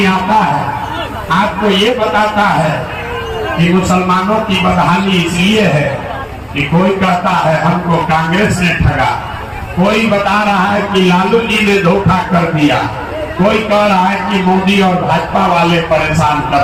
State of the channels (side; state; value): both; identical; correlation 1.00